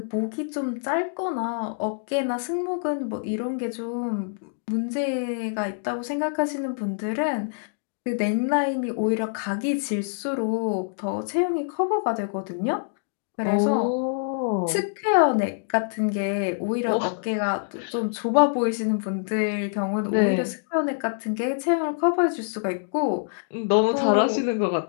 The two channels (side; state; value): right; silent; digital silence